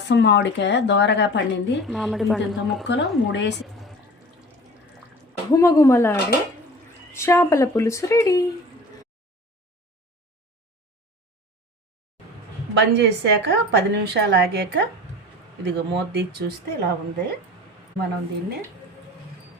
మామిడికాయ దోరగా పండింది, మామిడి పండు ముక్కలు 3 వేసి గుమగుమలాడే చేపల పులుసు రెడీ. బంద్ చేశాక 10 నిమిషాలు ఆగాక ఇదిగో మూత తీసి చూస్తే ఇలా ఉంది. మనం దీన్ని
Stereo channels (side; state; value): both; normal; correlation 0.40